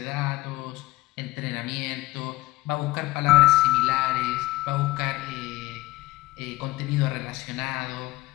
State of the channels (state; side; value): quieter; right; 18.1 dB